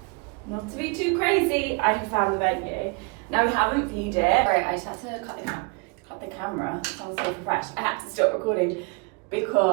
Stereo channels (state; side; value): quieter; left; 30.9 dB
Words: not to be too crazy, I have found the venue. Now we haven't viewed it. Right, I just had to cut the camera. I'm so fresh. I had to stop recording